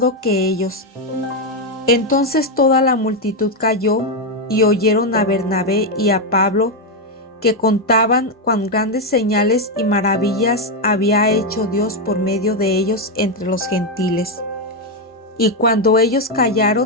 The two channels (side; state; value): both; normal; correlation 0.05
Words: que ellos. Entonces toda la multitud calló, y oyeron a Bernabé y a Pablo, que contaban cuán grandes señales y maravillas había hecho Dios por medio de ellos entre los gentiles. Y cuando ellos